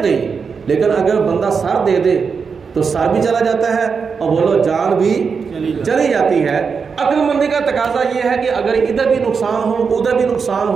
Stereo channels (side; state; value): left; quieter; 5.6 dB